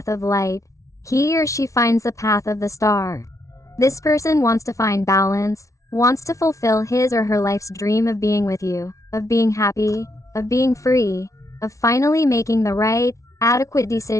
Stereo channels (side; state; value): right; late; 0.15 ms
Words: of light, he or she finds the path of the star. This person wants to find balance, wants to fulfill his or her life's dream of being with you, of being happy, of being free, of finally making the right, adequate